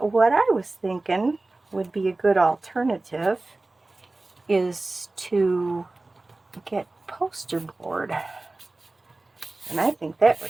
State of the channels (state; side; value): quieter; left; 3.1 dB